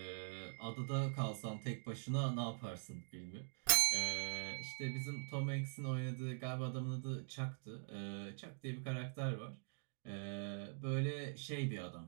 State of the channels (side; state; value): left; silent; digital silence